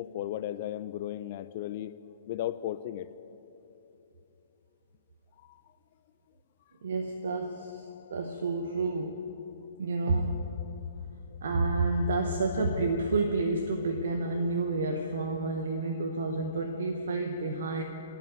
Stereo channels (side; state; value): both; inverted; correlation -0.60